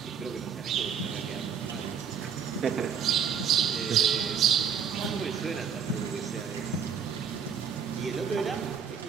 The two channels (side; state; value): left; quieter; 7.2 dB